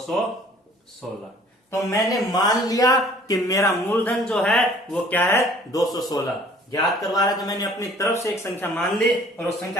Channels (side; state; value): both; normal; correlation 0.53